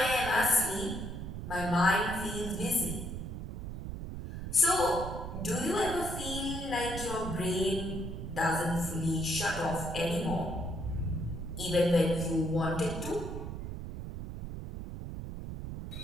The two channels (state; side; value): noise; right; rumble, 7 dB below the sound